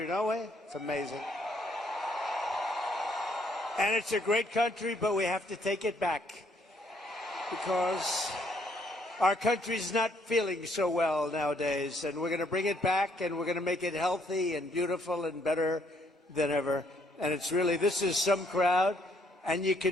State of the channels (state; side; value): normal; both; correlation 0.68